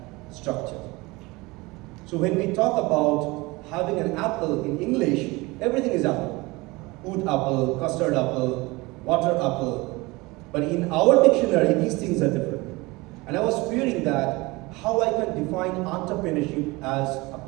structure. So when we talk about having an apple in English, everything is apple. Oat apple, custard apple, water apple. But in our dictionary, these things are different. And I was fearing that how I can define entrepreneurship as a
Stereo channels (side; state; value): left; quieter; 23.1 dB